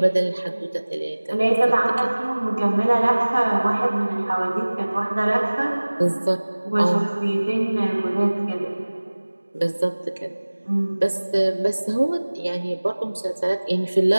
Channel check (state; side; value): inverted; both; correlation -1.00